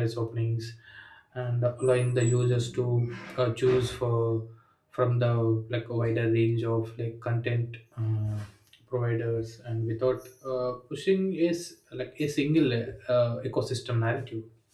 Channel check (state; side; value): identical; both; correlation 1.00